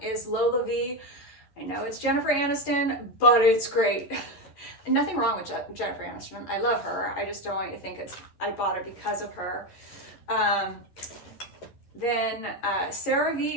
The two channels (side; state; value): right; late; 11 ms